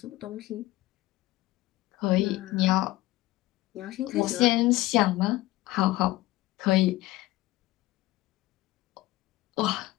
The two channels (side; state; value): right; quieter; 17.9 dB